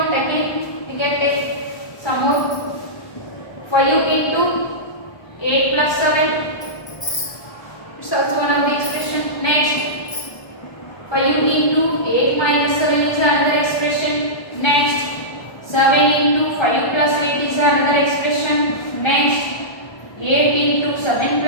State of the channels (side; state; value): right; late; 1.2 ms